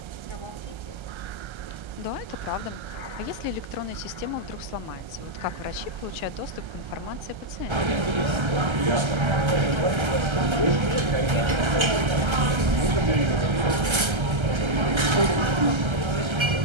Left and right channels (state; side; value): late; left; 1.3 ms